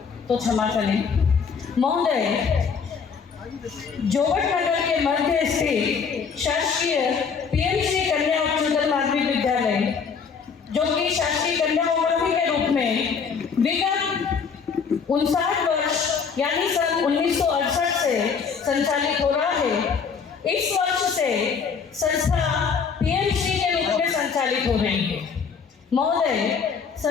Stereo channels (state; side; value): quieter; right; 6.0 dB